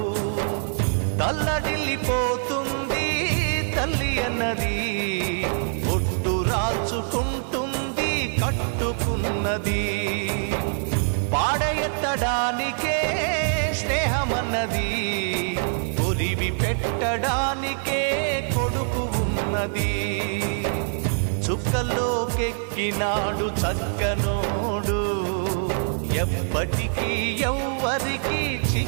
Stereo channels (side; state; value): left; silent; 60 dB below the other